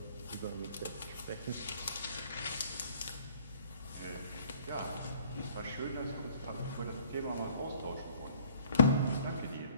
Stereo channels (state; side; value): inverted; both; correlation -0.57